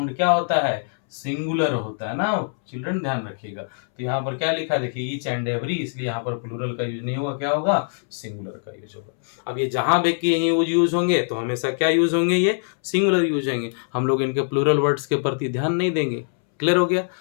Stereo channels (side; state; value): right; silent; 63 dB below the other